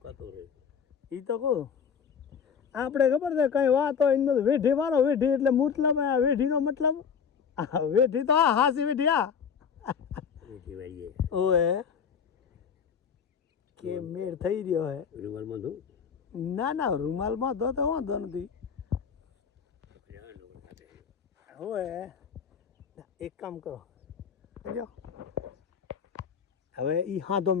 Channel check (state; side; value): quieter; right; 6.9 dB